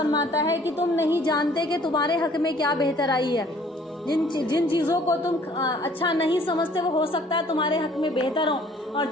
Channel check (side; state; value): both; normal; correlation 0.56